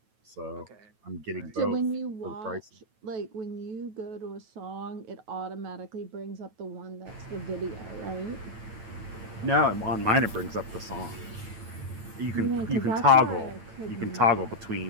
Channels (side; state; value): left; late; 9.1 ms